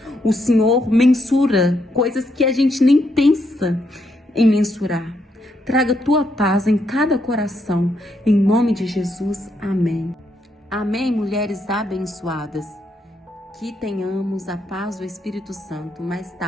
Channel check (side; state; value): both; normal; correlation 0.77